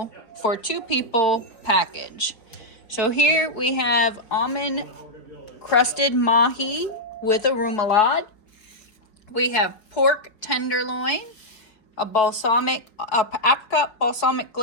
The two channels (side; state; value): right; late; 4.8 ms